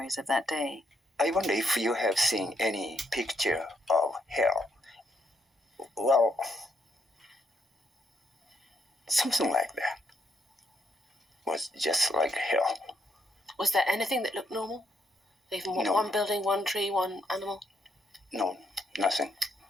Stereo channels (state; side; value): normal; both; correlation 0.76